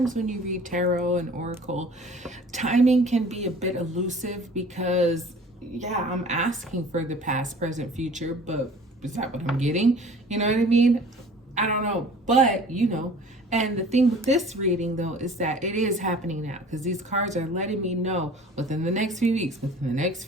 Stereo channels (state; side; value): normal; both; correlation 0.47